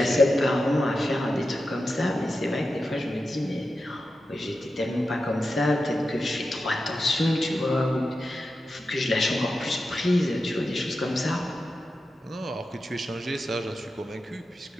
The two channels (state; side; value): normal; both; correlation 0.91